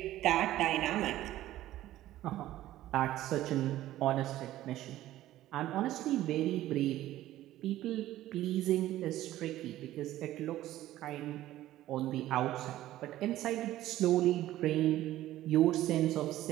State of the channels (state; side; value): quieter; left; 14.4 dB